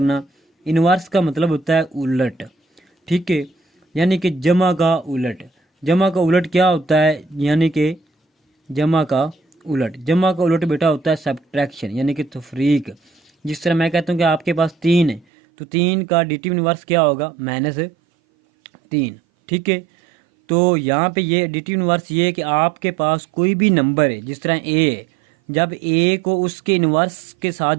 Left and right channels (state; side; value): drops out; left; at 15.2 s